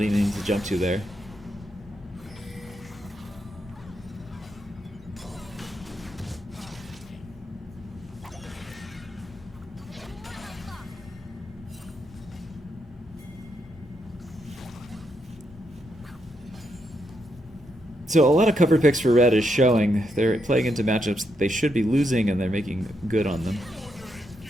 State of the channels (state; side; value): normal; both; correlation 0.80